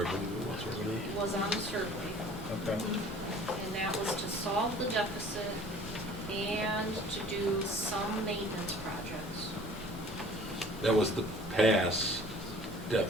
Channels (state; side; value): normal; both; correlation 0.49